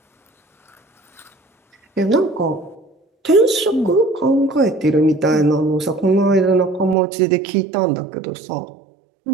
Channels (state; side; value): drops out; left; at 7.0 s